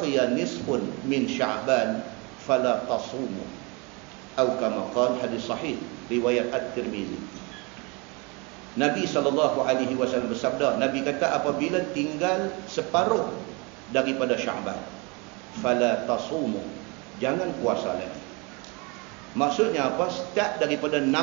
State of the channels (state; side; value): quieter; left; 29.2 dB